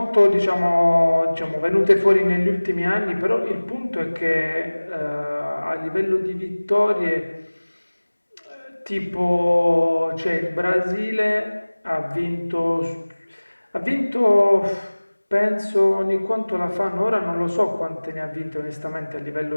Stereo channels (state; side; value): inverted; both; correlation -1.00